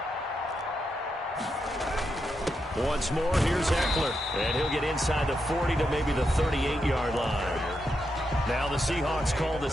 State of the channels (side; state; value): both; normal; correlation 0.84